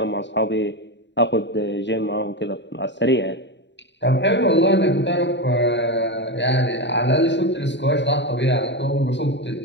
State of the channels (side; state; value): right; late; 0.52 ms